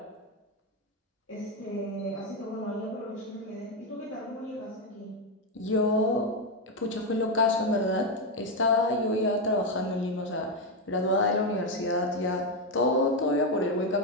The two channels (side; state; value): both; normal; correlation 0.07